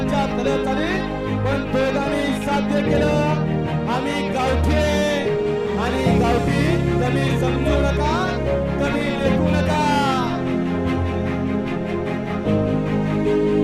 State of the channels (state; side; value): identical; both; correlation 1.00